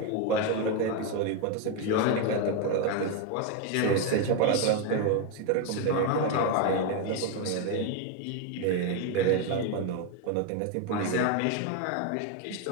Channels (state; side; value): different; both; correlation 0.02